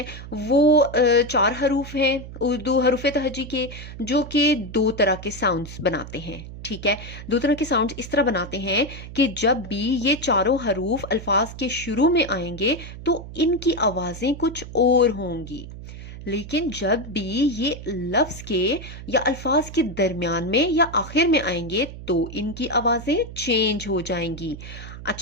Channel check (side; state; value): right; noise; hum, 12 dB below the sound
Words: वो 4 हरूफ हैं उर्दू हरूफ तहजी के, जो कि दो तरह के साउंड्स बनाते हैं। ठीक है, दो तरह के साउंड्स इस तरह बनाते हैं कि जब भी ये चारों हरूफ अल्फाज के शुरू में आएंगे तो इनकी आवाजें कुछ और होंगी, लेकिन जब भी ये लफ्ज के या अल्फाज के दरमियान में या आखिर में आएंगे तो इनकी आवाजें चेंज हो जाएंगी।